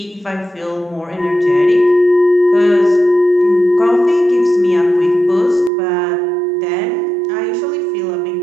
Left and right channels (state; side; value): drops out; left; at 5.7 s